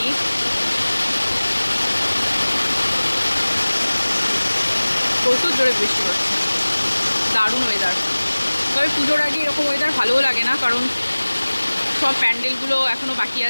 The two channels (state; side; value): inverted; both; correlation -1.00